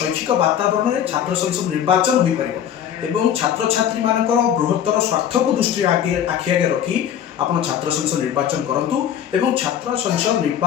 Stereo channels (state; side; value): quieter; right; 9.5 dB